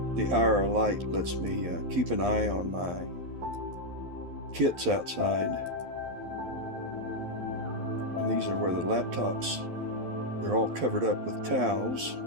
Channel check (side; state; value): left; late; 12 ms